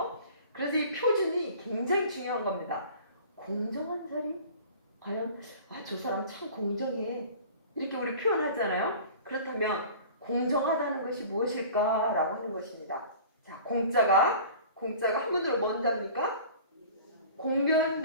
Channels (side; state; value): both; inverted; correlation -0.43